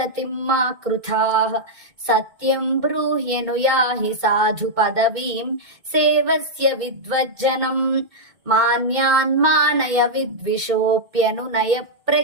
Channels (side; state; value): left; late; 2.2 ms